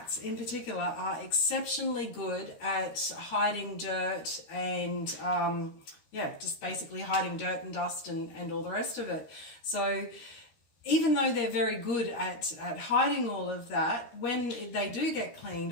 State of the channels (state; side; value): late; right; 13 ms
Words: in particular are exceptionally good at hiding dirt and just basically hiding dirt and dust and all the rest of it. So even though they're very good at hiding all of that, when they do get